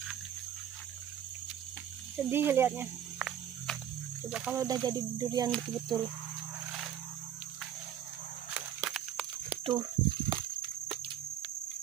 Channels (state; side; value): quieter; left; 10.3 dB